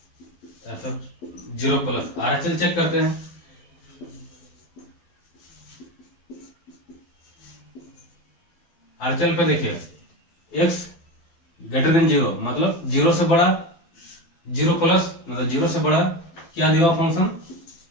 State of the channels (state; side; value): late; right; 12 ms